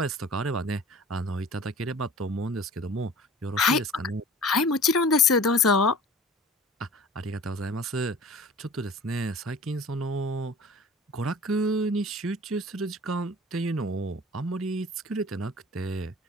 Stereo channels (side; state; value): both; normal; correlation 0.44